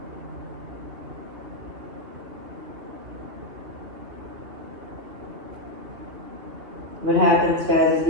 What happens, guys, is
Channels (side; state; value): left; late; 2.5 ms